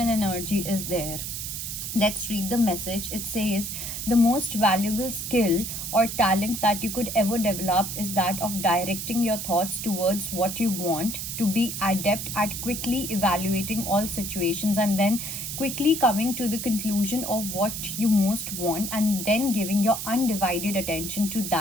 energy is there. Let's read the message. It says, the most valuable skill or talent that you could ever develop is that of directing your thoughts towards what you want, to be adept at quickly evaluating all situations and then quickly coming to the conclusion of what you most want and then giving your undivided attention to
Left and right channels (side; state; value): right; noise; hiss, 5 dB below the sound